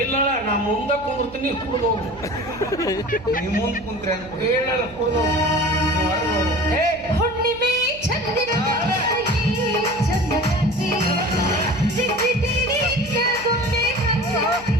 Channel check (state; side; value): noise; right; hum, 19 dB below the sound